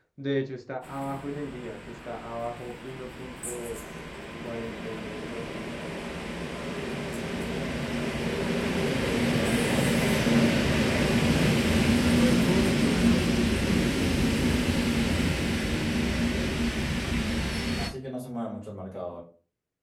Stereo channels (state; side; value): identical; both; correlation 1.00